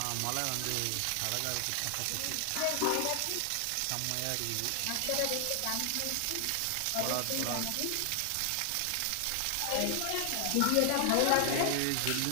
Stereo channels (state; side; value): different; both; correlation 0.00